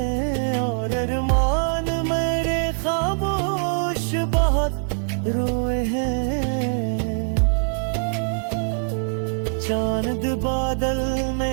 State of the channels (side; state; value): left; silent; 57 dB below the other